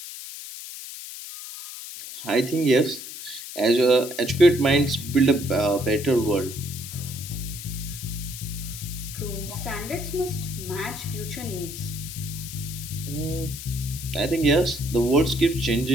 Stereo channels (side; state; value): left; noise; hiss, 10 dB below the sound